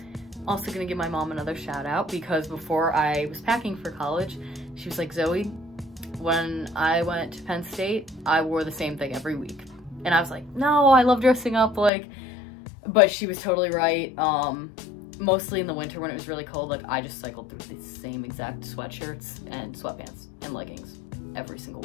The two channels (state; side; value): drops out; right; at 11.9 s